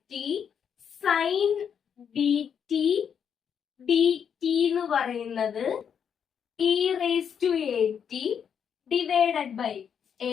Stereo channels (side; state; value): right; quieter; 7.7 dB